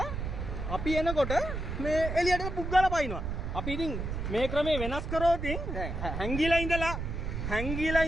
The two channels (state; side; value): noise; right; rumble, 4 dB below the sound